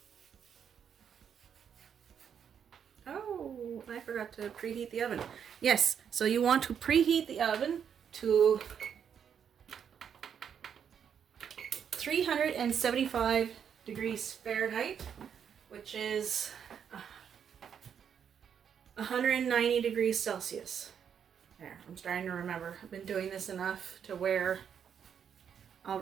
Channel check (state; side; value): quieter; left; 7.9 dB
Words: Oh, I forgot to preheat the oven. Yes, so you want to preheat the oven to 375 degrees Fahrenheit, which is 190 degrees Celsius. There, I'm starting to remember. I've been doing this enough to where